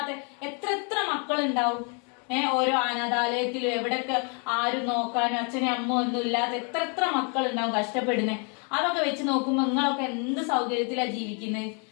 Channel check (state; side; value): quieter; right; 37.5 dB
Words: എത്ര മക്കളുണ്ടാവും. ഓരോ അനാഥാലയത്തിലും എവിടെയൊക്കെ ആരും നോക്കാനും അച്ഛനും അമ്മ ഒന്നും ഇല്ലാത്ത എത്ര മക്കളുണ്ടാവും കഷ്ടപ്പെടുന്നേ. അതൊക്കെ വെച്ച് നോക്കുമ്പോ നിങ്ങളൊക്കെ എന്ത് സൗകര്യത്തിലാ ജീവിക്കുന്നത്.